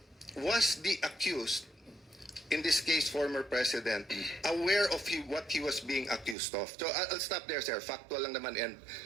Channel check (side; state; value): left; drops out; at 6.4 s